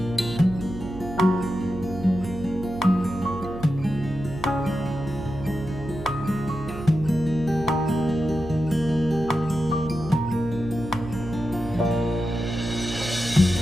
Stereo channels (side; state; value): right; noise; hum, 11 dB below the sound